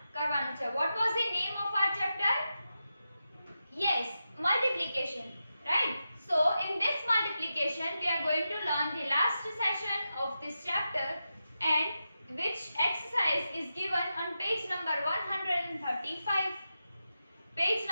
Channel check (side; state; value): both; inverted; correlation -0.90